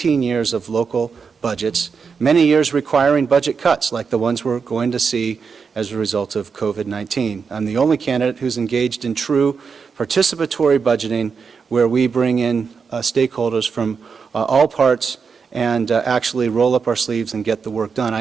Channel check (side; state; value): left; quieter; 5.7 dB